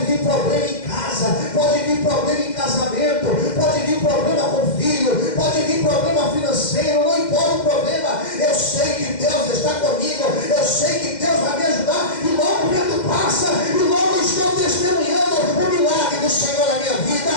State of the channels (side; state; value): right; late; 2.1 ms